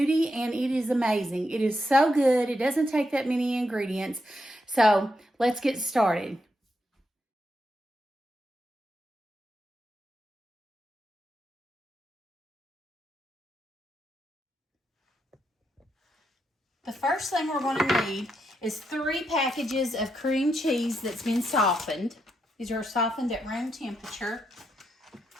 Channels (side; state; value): both; normal; correlation 0.82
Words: and it is amazing. It is so good. It doesn't take that many ingredients. So let's get started. The first thing we're going to need is 3 packages of cream cheese that's been softened. These are softened at room temperature.